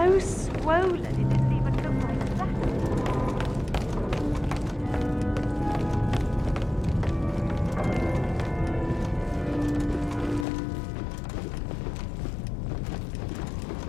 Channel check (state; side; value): drops out; right; at 10.5 s